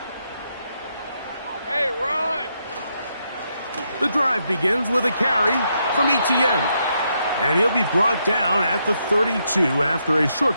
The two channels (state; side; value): inverted; both; correlation -0.79